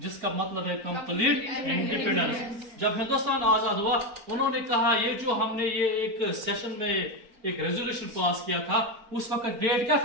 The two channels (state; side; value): late; left; 4.5 ms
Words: मतलब है कंप्लीट इंडिपेंडेंस। जब हिंदुस्तान आजाद हुआ उन्होंने कहा ये जो हमने ये एक सेशन में एक रेजोल्यूशन पास किया था, उस वक्त डेट क्या